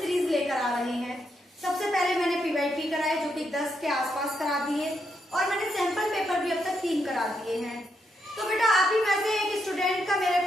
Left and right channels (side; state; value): both; normal; correlation 0.80